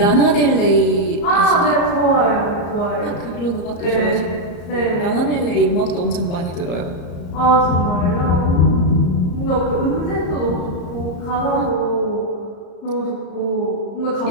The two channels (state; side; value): late; right; 34 ms